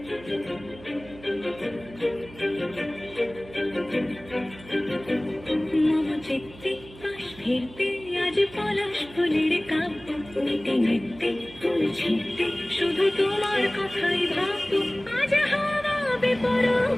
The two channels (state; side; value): noise; right; hum, 19 dB below the sound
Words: মম চিত্তে পাশ ফিরতে আজ পলাশ ফুলের কাব্য, নিতে নিতে ফুল ছিঁড়তে শুধু তোমার কথাই ভাববো। আজ হাওয়া